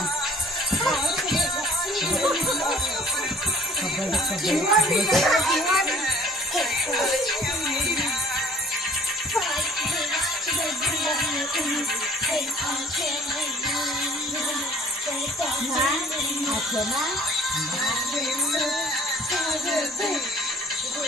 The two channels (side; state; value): both; normal; correlation 0.54